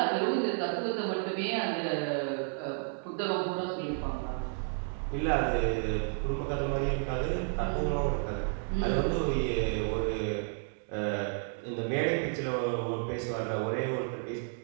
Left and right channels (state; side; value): silent; left; 57 dB below the other